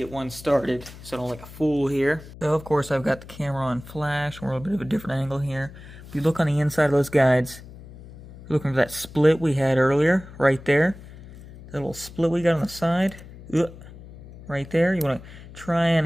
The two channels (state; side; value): noise; left; hum, 17 dB below the sound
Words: one started so I don't look like a fool here. So of course I've got the camera on flash. We're a little bit of a different angle here. If you look on the inside of those guides, you're looking for that split we had earlier, right there. That little split we got on the side, right there. You want to try